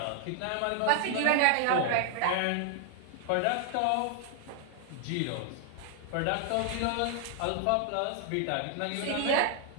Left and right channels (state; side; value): different; both; correlation 0.00